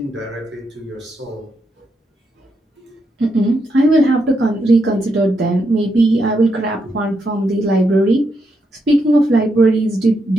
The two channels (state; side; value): normal; both; correlation 0.81